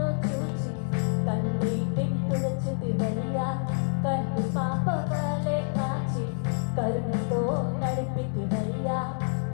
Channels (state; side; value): silent; right; 60 dB below the other